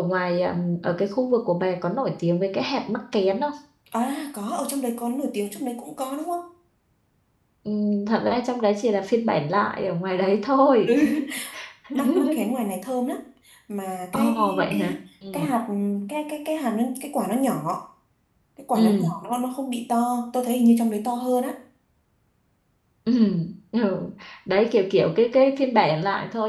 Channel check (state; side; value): identical; both; correlation 1.00